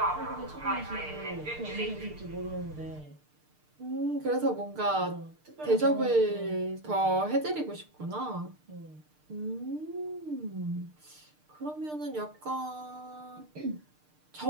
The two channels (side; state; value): left; late; 6.6 ms